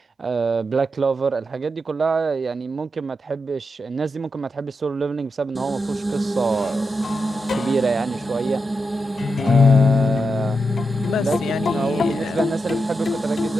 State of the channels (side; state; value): both; normal; correlation 0.86